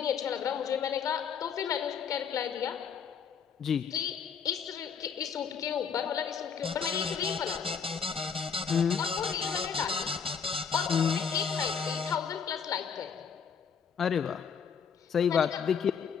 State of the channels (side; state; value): right; quieter; 6.7 dB